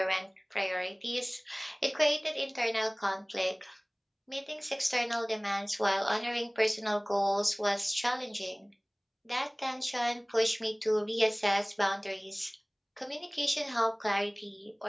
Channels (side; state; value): both; identical; correlation 1.00